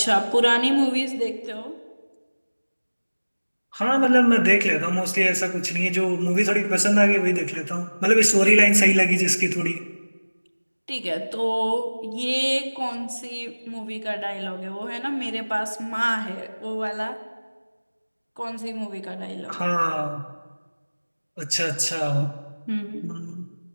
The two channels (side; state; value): both; inverted; correlation -1.00